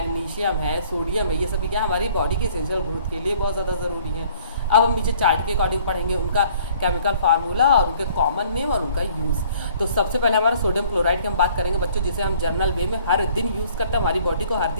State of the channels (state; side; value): inverted; both; correlation -0.57